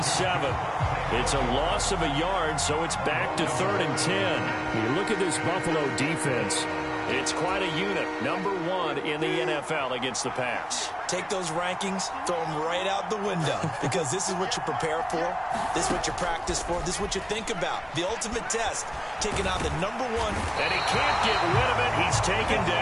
It's a loss of a yard, so it's back to 3rd and 10. When you look at this Buffalo defense, it's quite a unit. Number 1 in the NFL against the pass. Take those rankings, throw them right out the window, because this is what you prepare for. This is what you practice for. This is what you think about. The ultimate test, taking on the number 1. And he can't get rid of it. He's taken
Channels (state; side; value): identical; both; correlation 1.00